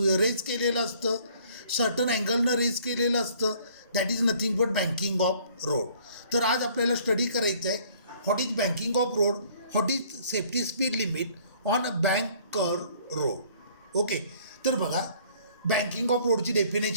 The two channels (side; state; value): both; inverted; correlation -0.58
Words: रेज केलेलं असतं, सर्टन अँगलनं रेज केलेलं असतं. That is nothing but banking of road. तर आज आपल्याला स्टडी करायचं आहे what is banking of road, what is safety speed limit on a bank curve road. Okay, तर बघा बँकिंग ऑफ रोडची